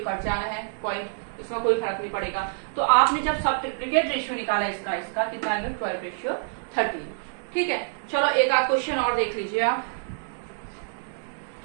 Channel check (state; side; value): silent; left; digital silence